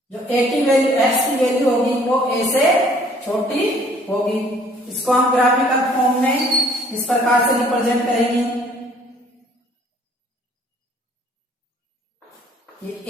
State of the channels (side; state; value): both; normal; correlation 0.58